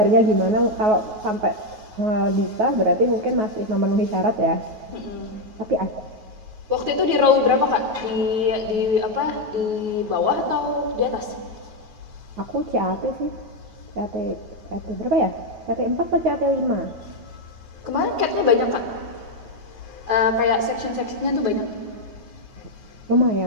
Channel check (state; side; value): late; left; 9.3 ms